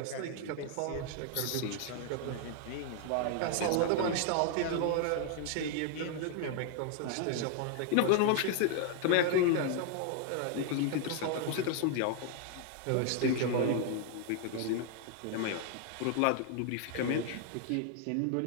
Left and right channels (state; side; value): different; both; correlation 0.00